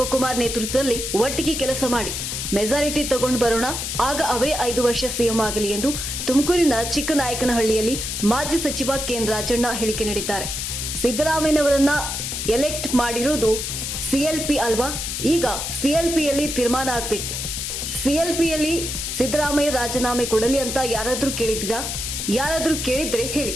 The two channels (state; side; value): noise; left; hiss, 4 dB below the sound